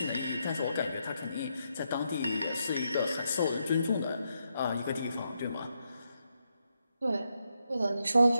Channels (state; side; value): inverted; both; correlation -0.82